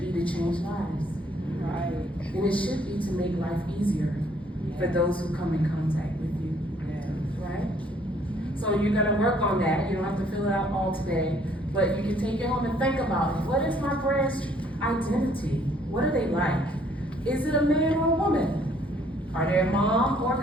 be to change lives. Right. And it should be to make life easier for those who come in contact with you. Right? So you're gonna work on that. You don't have to fill it out all today, but you can take it home and think about it. What is my brand's identity? What are they like? Is it a man or a woman? Are they a mom or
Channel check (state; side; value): normal; both; correlation 0.63